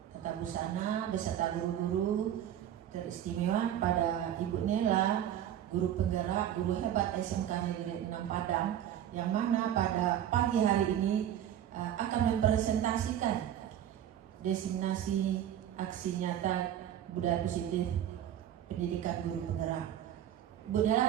Tata Busana beserta guru-guru teristimewa pada Ibu Nela, guru penggerak, guru hebat SMK Negeri 6 Padang, yang mana pada pagi hari ini akan mempresentasikan diseminasi aksi nyata budaya positif pendidikan guru penggerak. Ibu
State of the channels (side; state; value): left; quieter; 10.8 dB